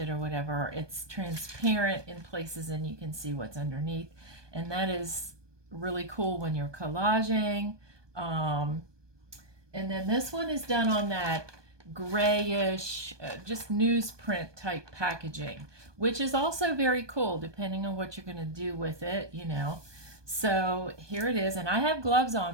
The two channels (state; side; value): late; left; 1.2 ms